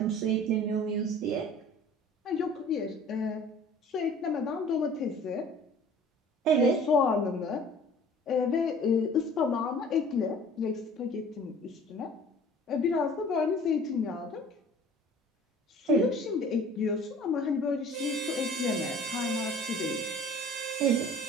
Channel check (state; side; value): normal; both; correlation 0.47